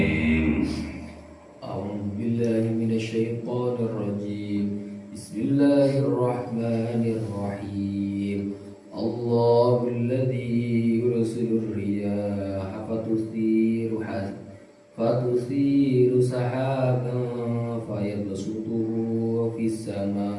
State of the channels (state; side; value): identical; both; correlation 1.00